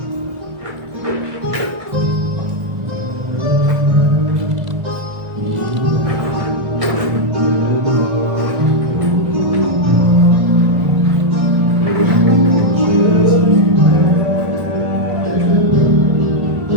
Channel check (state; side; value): late; left; 1.8 ms